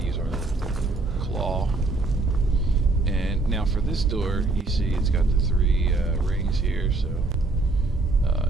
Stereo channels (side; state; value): left; quieter; 3.2 dB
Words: use our little claw. And now for this door, you see it's got the 3 rings here, so